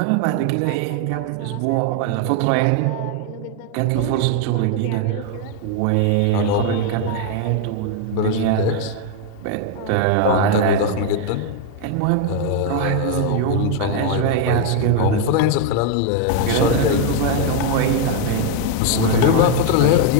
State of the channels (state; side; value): different; both; correlation 0.00